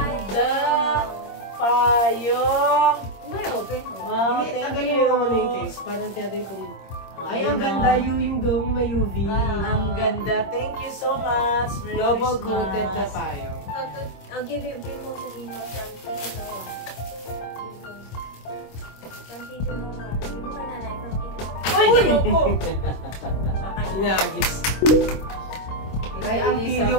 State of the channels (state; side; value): late; right; 26 ms